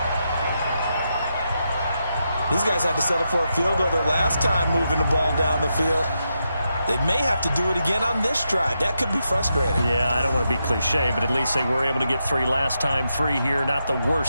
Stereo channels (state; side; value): inverted; both; correlation -0.85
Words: These guys had to settle for a field goal their last time moving the ball down the field. They may have to do it again on this drive. That could be frustrating. Yeah, I don't want to be cliche, but at least they were able to get 3 last time. 3 here, not the